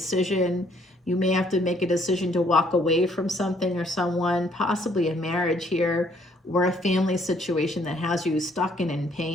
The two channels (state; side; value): normal; both; correlation 0.65